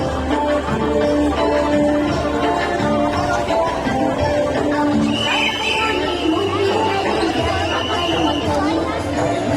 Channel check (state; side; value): identical; both; correlation 1.00